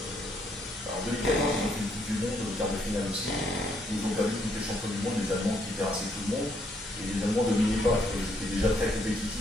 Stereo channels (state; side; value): normal; both; correlation 0.72